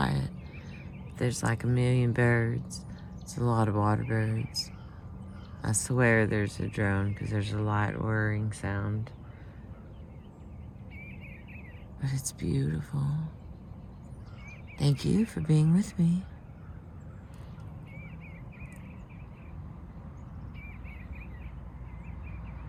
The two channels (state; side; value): identical; both; correlation 1.00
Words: There's like a million birds. It's a lot of water birds. I swear there's a drone because there's a light whirring sound. But it's beautiful. Thank you for being with me.